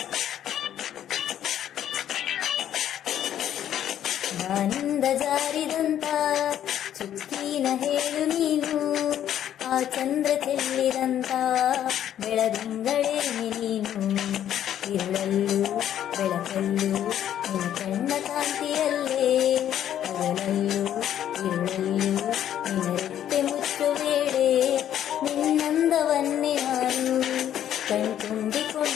ಬಾನಿಂದ ಜಾರಿದಂತ ಚುಕ್ಕಿನ ಹೇಳು ನೀನು, ಆ ಚಂದ್ರ ಚೆಲ್ಲಿದಂತ ಬೆಳದಿಂಗಳೇನೆ ನೀನು. ಇರುಳಲ್ಲೂ ಬೆಳಕಲ್ಲೂ ನಿನ್ನ ಕಣ್ಣ ಕಾಂತಿಯಲ್ಲೇ, ಹಗಲಲ್ಲೂ ಇರುಳಲ್ಲೂ ನಿನ್ನ ರೆಟ್ಟೆ ಮುಚ್ಚು ವೇಳೆ, ನಿನ್ನಂದವನ್ನೇ ನಾನು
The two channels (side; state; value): right; quieter; 10.7 dB